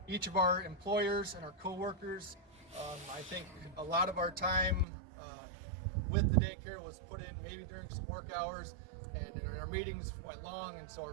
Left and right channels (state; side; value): drops out; left; at 4.9 s